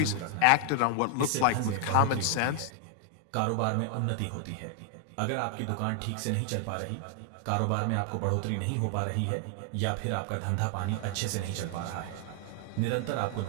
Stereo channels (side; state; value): both; different; correlation 0.00